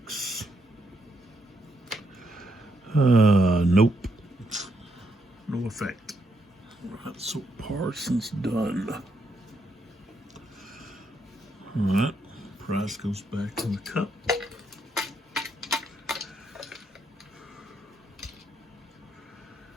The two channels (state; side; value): normal; both; correlation 0.77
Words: Nope. No effect. All right, so Parsons done. All right, Price goes back to the cup.